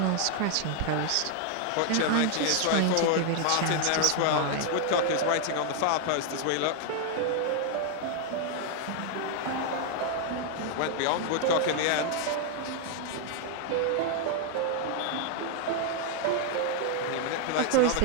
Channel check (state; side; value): different; both; correlation 0.00